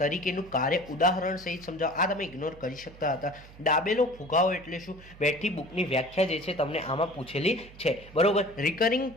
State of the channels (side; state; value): right; noise; hum, 20 dB below the sound